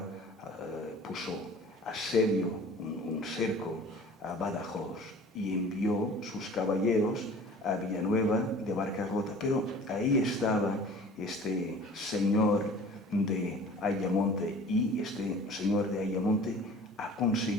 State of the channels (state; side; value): normal; both; correlation 0.45